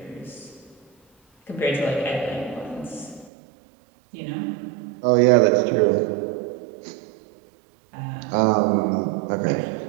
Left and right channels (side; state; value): left; drops out; at 3.3 s